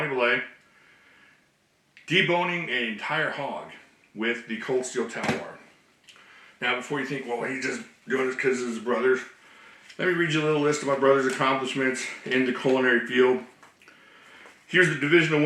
Belay, deboning an entire hog with the Cold Steel Talwar. Now, before you think, well, he's just doing this because of his brothers, let me read you a little list of my brother's accomplishments in the culinary field. Here's the divisional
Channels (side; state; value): both; identical; correlation 1.00